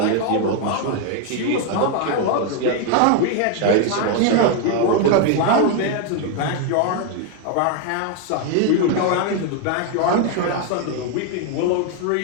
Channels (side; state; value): both; different; correlation 0.01